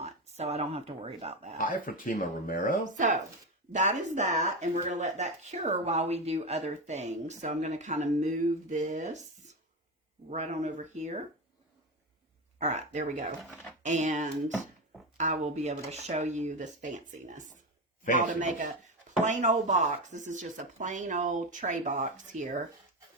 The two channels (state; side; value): normal; both; correlation 0.17